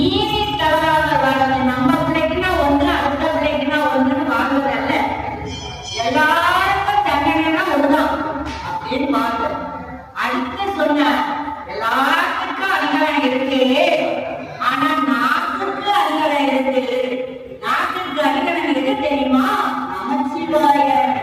தவறாக வாழ்வது. நம்ம பிள்ளைக்குன்னா ஒன்று, அடுத்த பிள்ளைக்குன்னா ஒன்றுன்னு வாழ்வதல்ல, எல்லாருக்கும் தண்டனைனா ஒண்ணுதான் அப்படின்னு வாழ்வது. அடுத்து சொன்னார், எல்லாத்துக்கும் அதிகாரம் இருக்கு, ஆனா நாட்டுக்கு அதிகாரம் இருக்கு. நாட்டுக்கு அதிகாரம் எது தெரியுமா? நமச்சிவாய.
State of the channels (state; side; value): identical; both; correlation 1.00